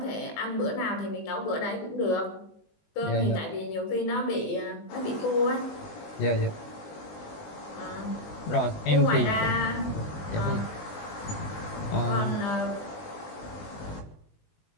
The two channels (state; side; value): late; right; 20 ms